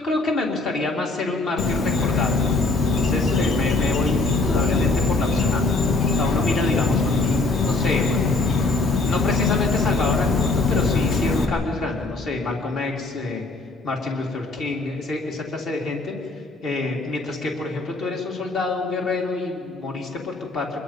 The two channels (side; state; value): right; quieter; 3.2 dB